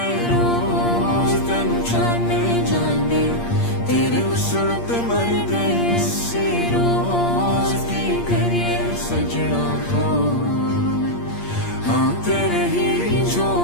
रोज तेनू जाने जाने तेरे उसल ते मर गए सी रोज की करिए सजना हो हाँ तेरे ही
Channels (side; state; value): right; late; 8.6 ms